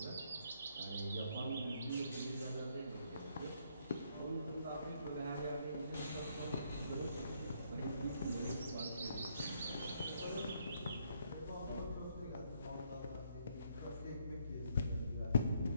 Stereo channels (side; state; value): both; inverted; correlation -0.71